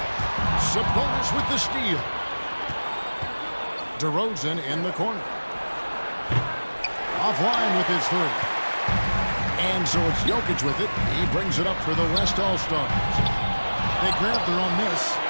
Sabonis with the steal. DeRozan in the corner. Offline with his 3. And so it's Jokic with it. He brings it up for the West All-Stars. They grab their own miss.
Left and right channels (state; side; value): inverted; both; correlation -1.00